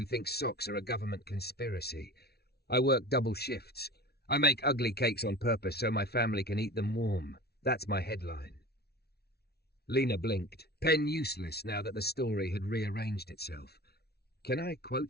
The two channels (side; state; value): right; late; 0.46 ms